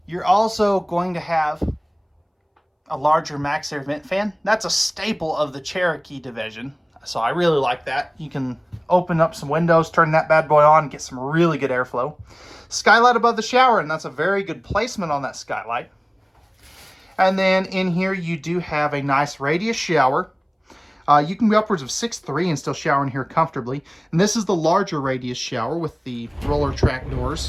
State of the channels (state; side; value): identical; both; correlation 1.00